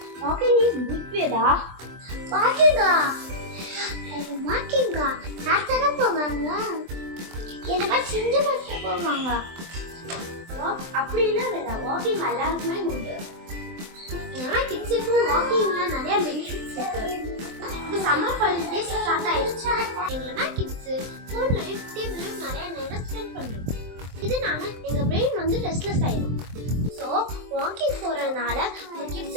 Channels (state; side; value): late; left; 23 ms